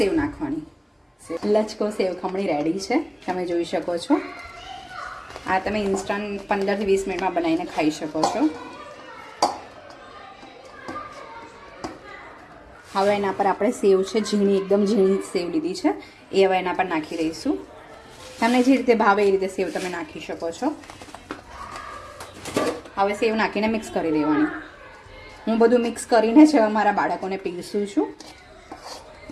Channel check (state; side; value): identical; both; correlation 1.00